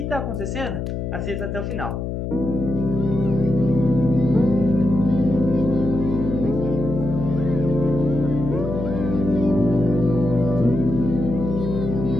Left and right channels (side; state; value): left; noise; hum, 4 dB below the sound